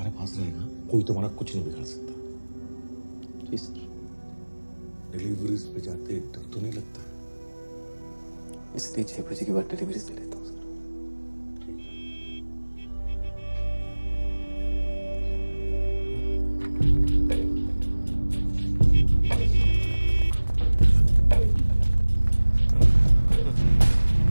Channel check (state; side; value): inverted; both; correlation -1.00